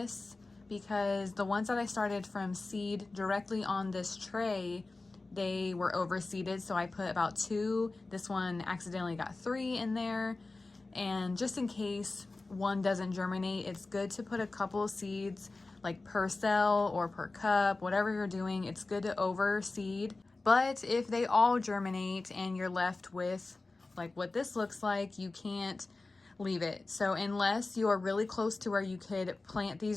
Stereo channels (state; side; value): quieter; right; 3.4 dB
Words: because the ones that I started from seed directly on this tray, they were overseeded, so I put about 2. This one accidentally got 3 in there, and just in case one doesn't germinate, it's good to put a couple of seeds like per cell or per cup, whatever you're doing. It's good to overseed. But if they all germinate and you're left with like what this looks like, you can't leave it. So unless you are really close to where you could plant